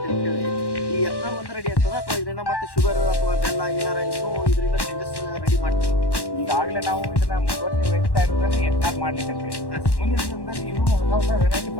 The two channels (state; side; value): late; right; 1.1 ms